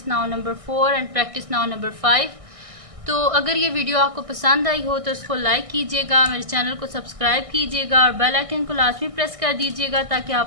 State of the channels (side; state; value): left; late; 1.6 ms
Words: now number 4 and practice now number 5। तो अगर ये वीडियो आपको पसंद आई हो तो इसको लाइक कीजिएगा, मेरे चैनल को सब्सक्राइब कीजिएगा और बेल आइकन को लाजमी प्रेस कर दीजिएगा ताकि